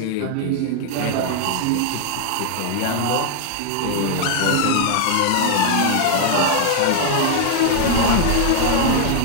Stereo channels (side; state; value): both; different; correlation 0.00